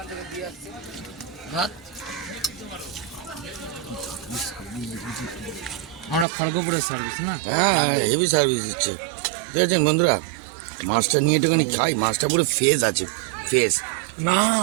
আমরা খড়গপুরের সার্ভিস না? হ্যাঁ হেভি সার্ভিস দিচ্ছে। দেখেছেন বন্ধুরা, মাছটা নিয়ে একটুখানি খাই, মাছটা পুরো ফেস আছে, ফেস। না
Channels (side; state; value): left; drops out; at 6.2 s